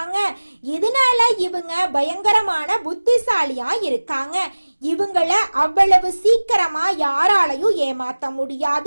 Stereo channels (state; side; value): inverted; both; correlation -1.00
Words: இதனால இவங்க பயங்கரமான புத்திசாலியா இருக்காங்க. இவங்கள அவ்வளவு சீக்கிரமா யாராலையும் ஏமாத்த